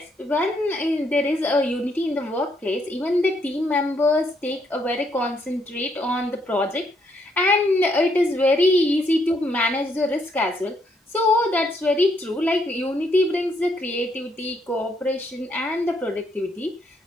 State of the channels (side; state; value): both; normal; correlation 0.73